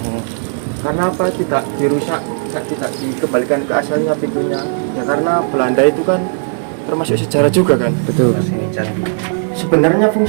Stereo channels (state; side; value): silent; left; digital silence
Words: Karena apa tidak dirusak, tidak dikembalikan ke asalnya pintunya ya, karena Belanda itu kan termasuk sejarah juga kan. Betul. Sebenarnya